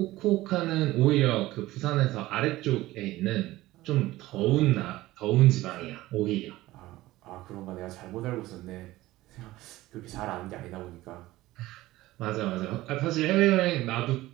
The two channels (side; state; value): left; quieter; 17.3 dB